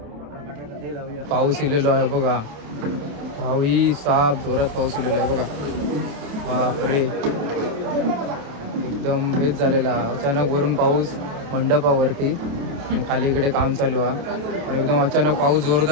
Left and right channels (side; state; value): left; late; 28 ms